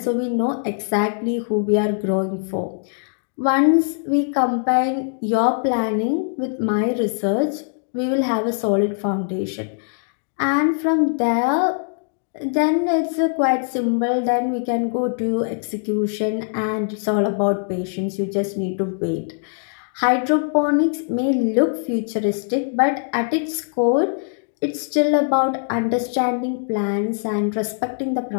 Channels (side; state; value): right; silent; digital silence